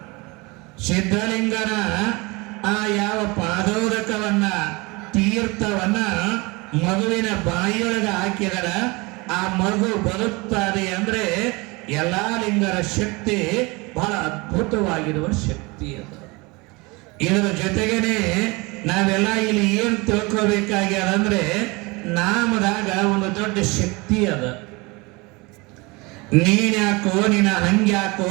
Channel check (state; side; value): quieter; left; 25.5 dB